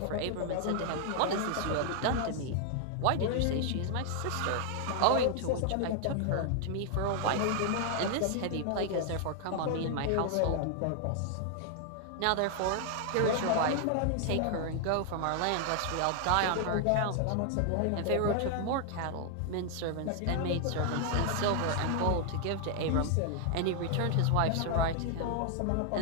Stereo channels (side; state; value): both; different; correlation 0.00